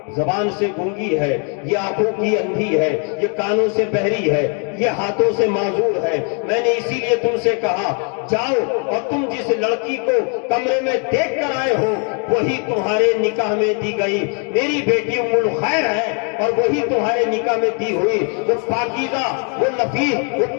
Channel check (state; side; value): quieter; right; 38.4 dB